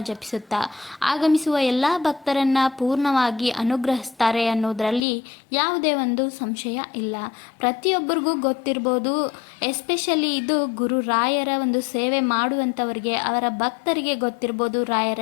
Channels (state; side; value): drops out; right; at 5.0 s